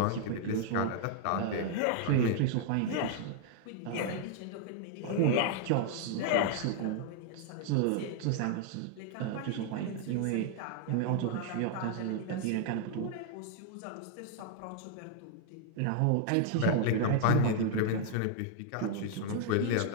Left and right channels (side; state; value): both; different; correlation 0.00